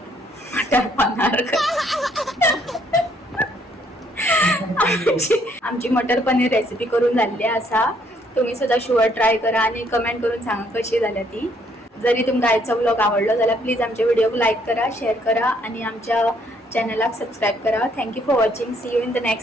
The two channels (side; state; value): both; normal; correlation 0.67